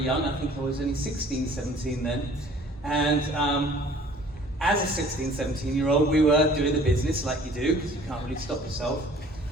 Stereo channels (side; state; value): both; normal; correlation 0.52